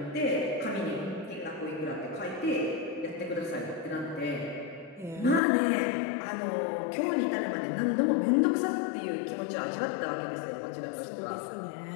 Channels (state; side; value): drops out; right; at 5.4 s